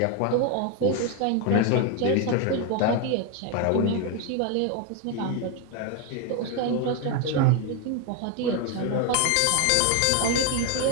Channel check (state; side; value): different; both; correlation 0.01